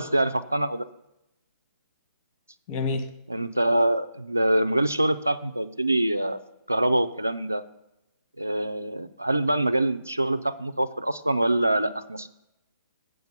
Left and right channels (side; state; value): both; inverted; correlation -0.92